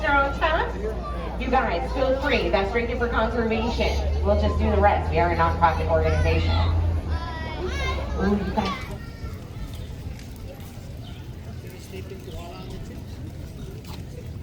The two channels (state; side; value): identical; both; correlation 1.00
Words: on tap. You guys, feel free. That's drinking for conservation. We'll just do the rest. We are a nonprofit organization. Ooh, you guys.